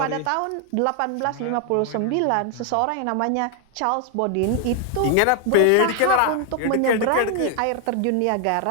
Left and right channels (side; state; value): both; different; correlation 0.00